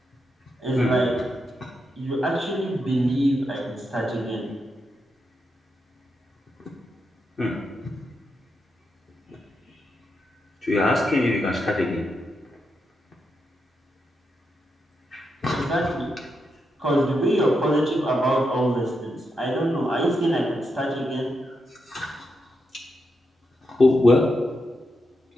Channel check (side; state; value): both; normal; correlation 0.84